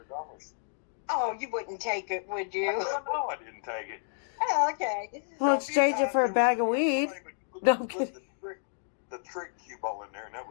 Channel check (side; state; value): right; silent; digital silence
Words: Oh, you wouldn't take it, would you? No, I didn't take it. Oh, okay. We'll exchange it for a bag of weed. No, I'm kidding. The trick cue ball in there, and that